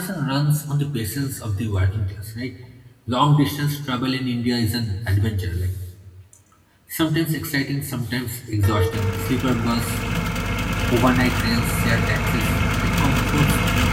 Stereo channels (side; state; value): both; identical; correlation 1.00